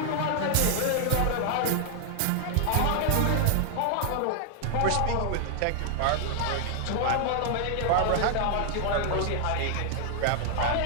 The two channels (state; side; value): different; both; correlation 0.00